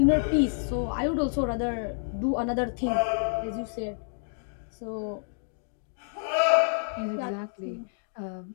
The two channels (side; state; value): right; silent; digital silence